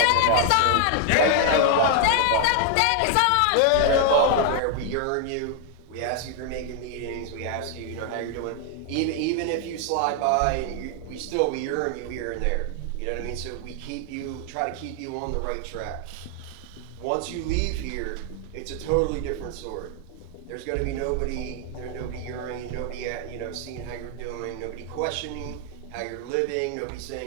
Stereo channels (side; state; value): both; different; correlation 0.00